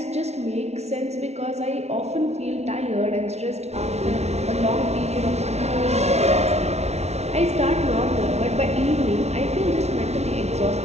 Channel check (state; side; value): late; left; 0.31 ms